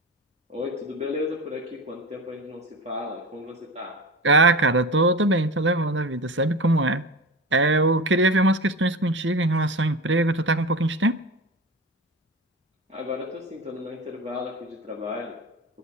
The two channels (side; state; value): both; normal; correlation 0.28